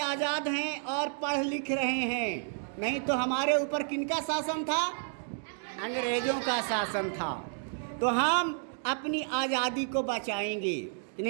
आज़ाद हैं और पढ़ लिख रहे हैं। नहीं तो हमारे ऊपर किनका शासन था? अंग्रेजों का शासन था। तो हम अपनी आज़ादी को बचाएंगे कि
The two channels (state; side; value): silent; left; 57 dB below the other